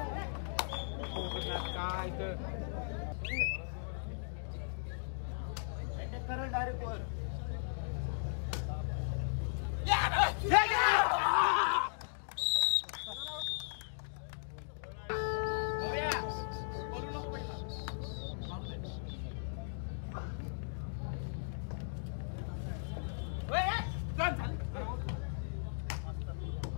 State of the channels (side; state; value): right; silent; digital silence